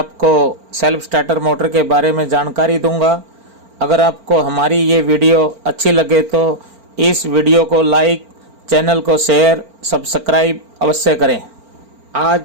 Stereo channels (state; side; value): late; left; 4.4 ms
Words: सेल्फ स्टार्टर मोटर के बारे में जानकारी दूंगा। अगर आपको हमारी ये वीडियो अच्छी लगे तो इस वीडियो को लाइक, चैनल को शेयर, सब्सक्राइब अवश्य करें।